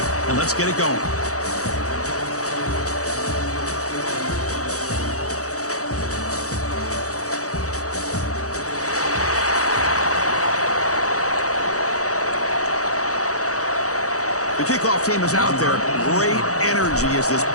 and let's get it going. The kickoff team is out there. Great energy as this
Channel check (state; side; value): late; right; 0.66 ms